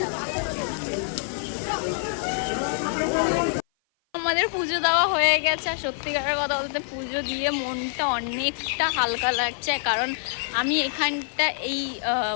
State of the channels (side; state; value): right; silent; 55 dB below the other